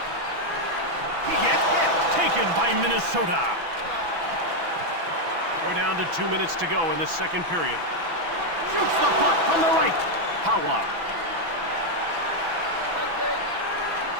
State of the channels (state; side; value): late; left; 6.0 ms